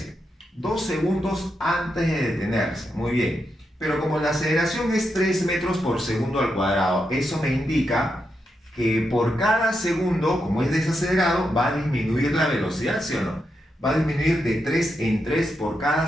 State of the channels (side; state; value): both; normal; correlation 0.84